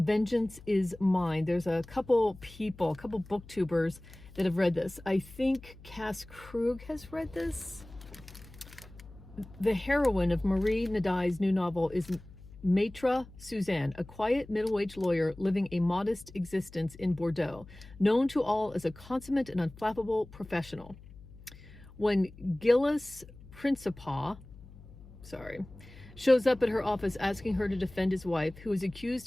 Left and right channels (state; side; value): noise; left; hum, 19 dB below the sound